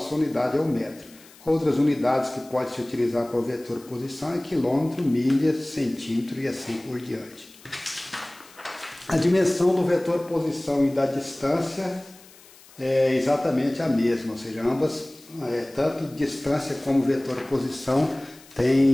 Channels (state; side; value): noise; left; hiss, 24 dB below the sound